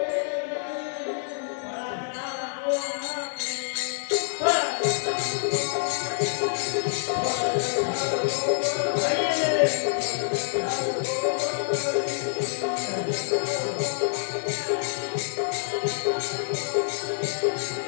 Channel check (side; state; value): right; silent; digital silence